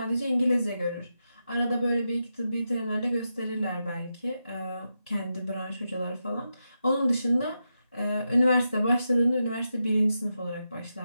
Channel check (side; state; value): both; inverted; correlation -0.88